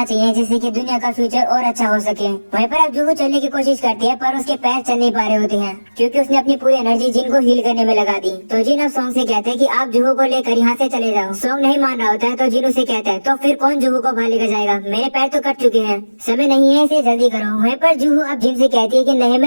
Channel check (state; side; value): inverted; both; correlation -1.00